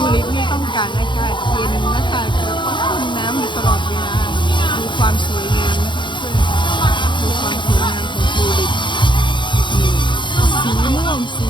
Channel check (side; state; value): right; late; 0.23 ms